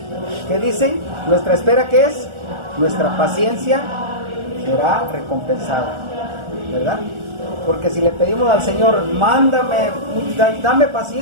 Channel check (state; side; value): late; left; 1.4 ms